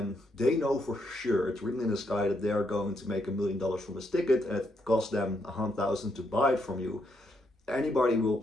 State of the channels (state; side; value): normal; both; correlation 0.77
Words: they know for sure, it's written in the sky that they are going to make $1 million from this ticket and it costs them $100,000 to buy it from you, anybody will